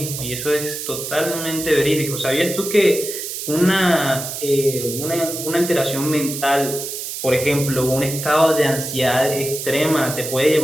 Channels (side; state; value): right; noise; hiss, 6 dB below the sound